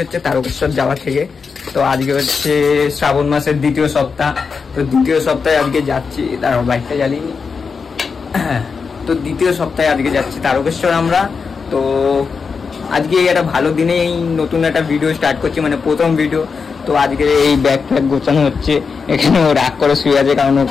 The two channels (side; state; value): right; quieter; 5.3 dB